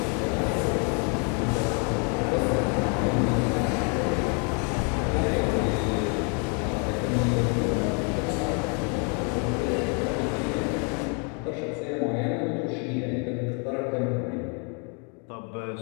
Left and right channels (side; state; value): right; quieter; 37.0 dB